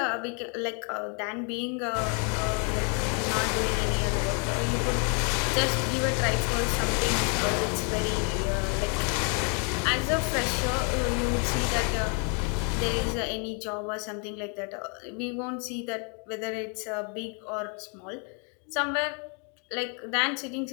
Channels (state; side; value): quieter; right; 38.3 dB